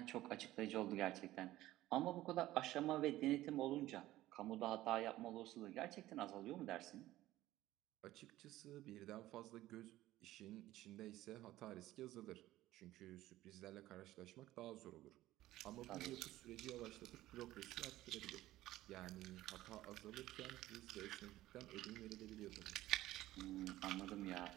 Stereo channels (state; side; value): quieter; left; 15.6 dB